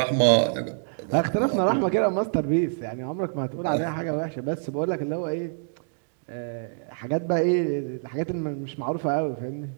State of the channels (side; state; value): left; silent; digital silence